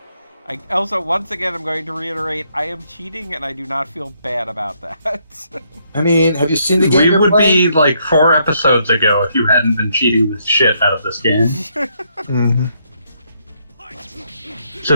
Also, once again, I'm going to reiterate, I am cheating and I do not feel bad about that. I mean, have you seen the game We you're would playing? be like 4 episodes ago if you hadn't been cheating the shit out of this game. Mm-hmm. It's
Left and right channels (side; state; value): both; inverted; correlation -0.73